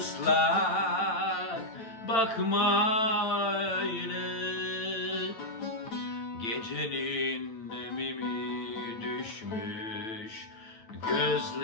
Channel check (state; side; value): late; right; 9.0 ms